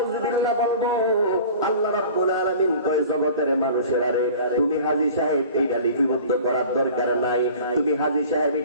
বলবো? আল্লাহ রাব্বুল আলামিন কয় জগতের মানুষেরা রে, তুমি হাজী সাহেব এইটা লিপিবদ্ধ করার দরকার নাই, তুমি হাজী সাহেব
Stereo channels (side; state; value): both; inverted; correlation -0.43